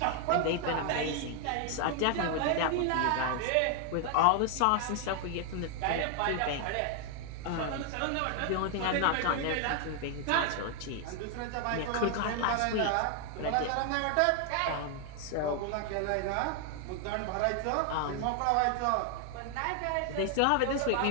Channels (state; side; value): different; both; correlation 0.00